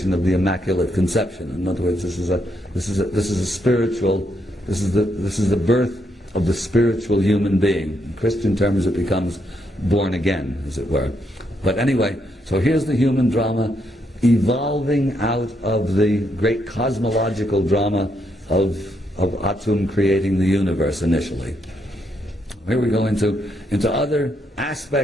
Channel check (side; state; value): both; normal; correlation 0.77